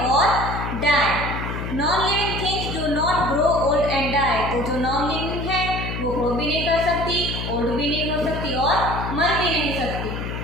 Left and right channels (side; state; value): left; noise; hum, 5 dB below the sound